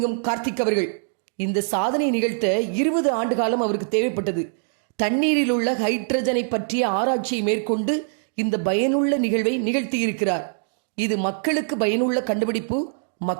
கார்த்திக் அவர்கள். இந்த சாதனை நிகழ்த்த 20 ஆண்டு காலம் அவருக்கு தேவைப்பட்டது. தண்ணீரில் உள்ள ஹைட்ரஜனை பற்றிய ஆராய்ச்சியை மேற்கொண்டு இந்த பயனுள்ள நிகழ்வை நிகழ்த்தியிருக்கிறார். இது மக்களுக்கு பயனுள்ள கண்டுபிடிப்பு,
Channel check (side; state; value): left; silent; digital silence